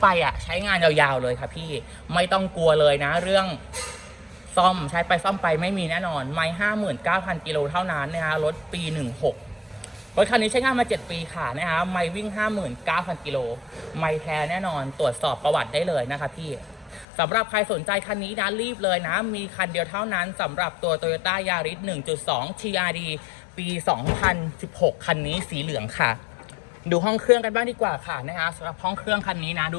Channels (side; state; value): right; drops out; at 17.1 s